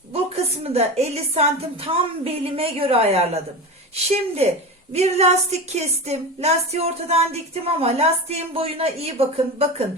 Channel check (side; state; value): both; normal; correlation 0.25